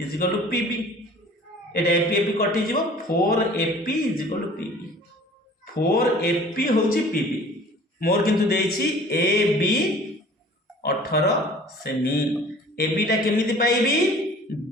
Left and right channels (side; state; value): both; normal; correlation 0.48